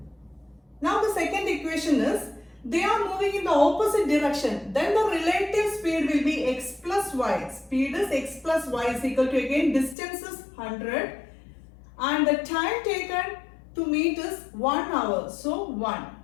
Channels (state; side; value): drops out; right; at 10.0 s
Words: Now the second equation is, they are moving in the opposite direction, then the relative speed will be x plus y. Speed is x plus y is equal to, again, distance is 100 and the time taken to meet is 1 hour. So 1.